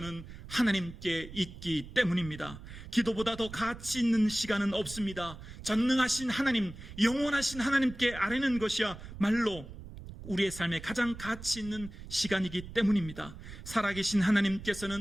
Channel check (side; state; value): right; noise; rumble, 13 dB below the sound